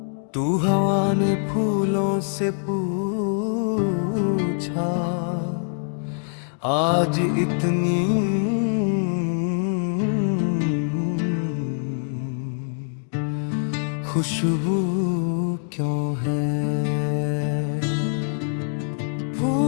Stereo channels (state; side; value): silent; right; digital silence